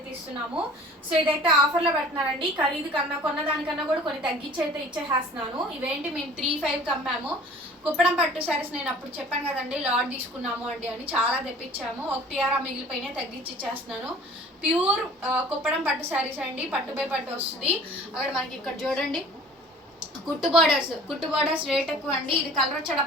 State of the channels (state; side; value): normal; both; correlation 0.47